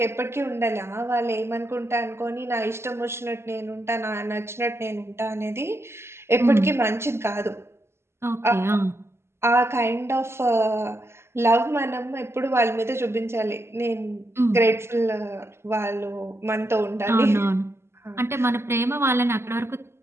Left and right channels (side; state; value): left; late; 0.12 ms